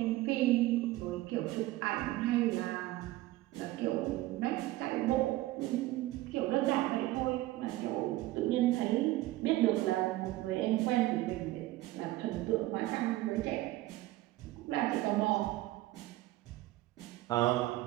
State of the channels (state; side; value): quieter; left; 17.2 dB